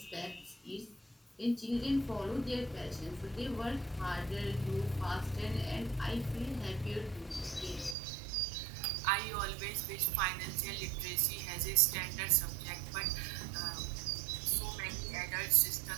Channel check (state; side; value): drops out; left; at 8.0 s